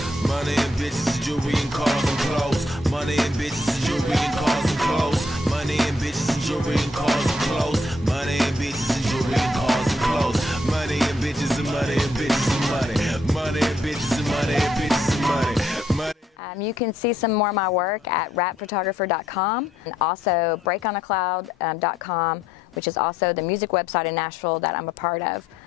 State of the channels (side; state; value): both; normal; correlation 0.72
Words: money and bitches, jewelry and cars and clothes. Money and bitches, jewelry and cars and clothes. Money and bitches, jewelry and cars and clothes. Money and bitches, jewelry and cars and clothes. Money and bitches and money and bitches and money. Money and bitches and money and bitches and money. You can see some more of my work at rapphotographer.com, and also breakonacloud.com, which is also the music website in Nashville that I'm a part of.